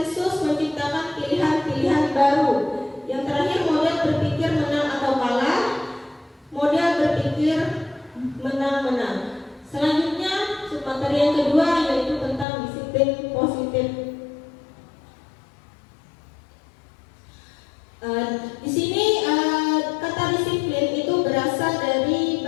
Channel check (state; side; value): drops out; right; at 12.5 s